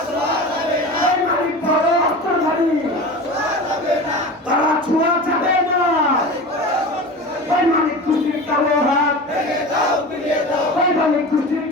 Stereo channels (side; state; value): both; normal; correlation 0.32